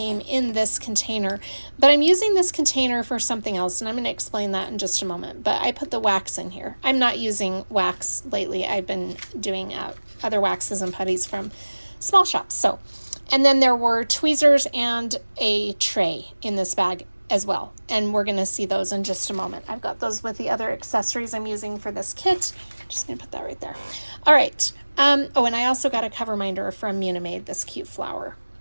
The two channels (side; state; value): both; inverted; correlation -1.00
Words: in this container, but I'm using this container for something else, and I'm going to explain that in just a moment. But I put the wax in here. I'm not using wax lately. I've been doing other waxes and putties from small shops. So, and then there were tweezers and a tray in this bag as well, and we're going to see those in just a moment. I've got those with the other accessories I'm using for this kit. Just going to put that right there. All right. Oh, and I also got a cover minder from Munimade, this cute flower.